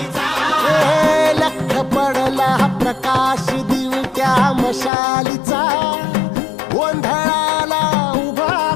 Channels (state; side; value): drops out; right; at 4.9 s